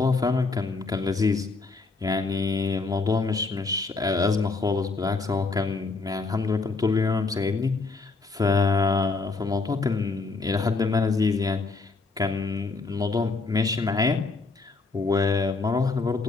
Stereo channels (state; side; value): quieter; right; 4.0 dB